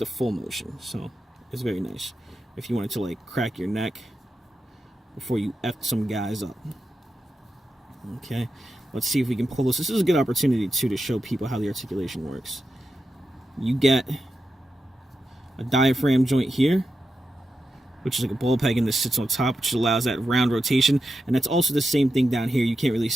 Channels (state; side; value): normal; both; correlation 0.89